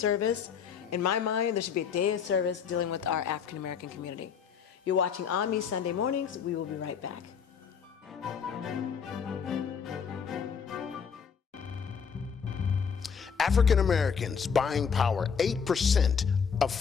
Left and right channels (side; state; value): right; quieter; 6.6 dB